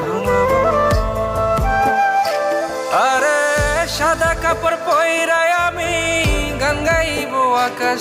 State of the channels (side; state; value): both; identical; correlation 1.00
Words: ঘুমাবো। আরে সাদা কাপড় পয়রায় আমি গান গাইব আকাশ